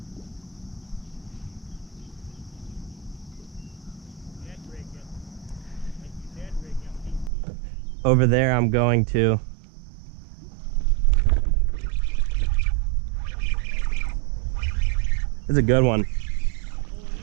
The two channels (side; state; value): left; drops out; at 7.3 s